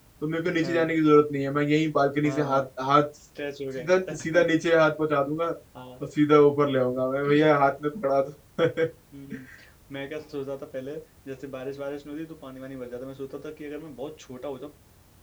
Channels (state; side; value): identical; both; correlation 1.00